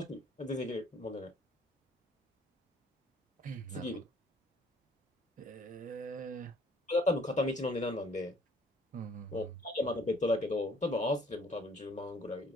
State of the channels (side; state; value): both; normal; correlation 0.59